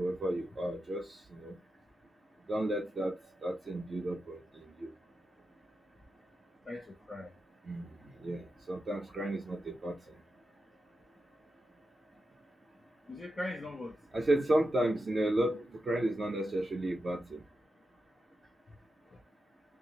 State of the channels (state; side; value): normal; both; correlation 0.89